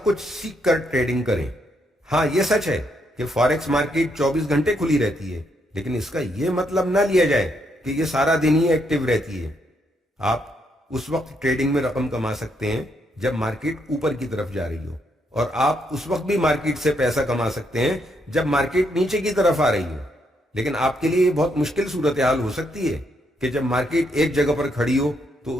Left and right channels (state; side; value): normal; both; correlation 0.76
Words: کچھ سیکھ کر ٹریڈنگ کریں۔ ہاں، یہ سچ ہے کہ فاریکس مارکیٹ 24 گھنٹے کھلی رہتی ہے، لیکن اس کا یہ مطلب نہ لیا جائے کہ یہ سارا دن ہی ایکٹیو رہتی ہے۔ آپ اس وقت ٹریڈنگ میں رقم کما سکتے ہیں جب مارکیٹ اوپر کی طرف جا رہی ہو، اور آپ اس وقت بھی مارکیٹ سے پیسہ کما سکتے ہیں جب مارکیٹ نیچے کی طرف آ رہی ہو۔ لیکن آپ کے لیے یہ بہت مشکل صورتحال ہو سکتی ہے کہ جب مارکیٹ ایک جگہ پر کھڑی ہو تو